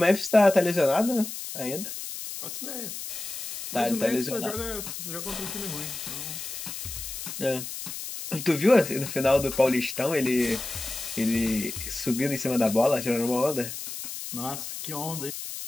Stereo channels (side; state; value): left; noise; hiss, 8 dB below the sound